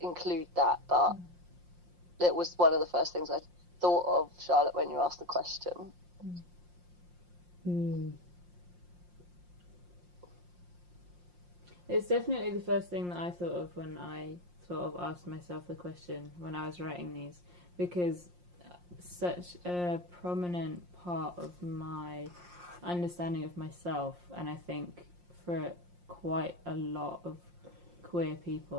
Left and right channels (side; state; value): left; late; 5.7 ms